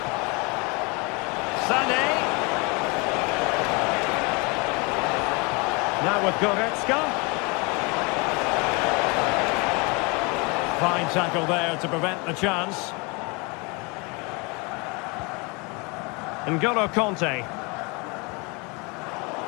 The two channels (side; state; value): right; quieter; 29.4 dB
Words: Sané. Now with Goretzka. Fine tackle there to prevent the chance. N'Golo Kanté.